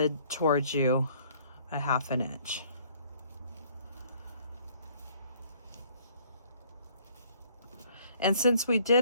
towards you a ½ inch. And since we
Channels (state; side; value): inverted; both; correlation -0.59